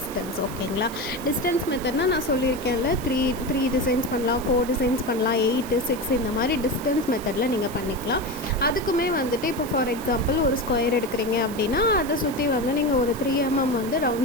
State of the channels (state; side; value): noise; right; hiss, 16 dB below the sound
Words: ஓகேங்களா, டிஸ்டன்ஸ் மெத்தட்னால் நான் சொல்லியிருக்கேன்ல 3 டிசைன்ஸ் பண்ணலாம், 4 டிசைன்ஸ் பண்ணலாம், 8 6 இந்த மாதிரி டிஸ்டன்ஸ் மெத்தடில் நீங்கள் பண்ணிக்கலாம். அதுக்குமே வந்துட்டு இப்போ ஃபார் எக்ஸாம்பிள் ஒரு ஸ்கொயர் எடுக்கிறீங்க அப்படின்னா அதை சுற்றி வந்து நீங்கள் ஒரு 3 mm வந்து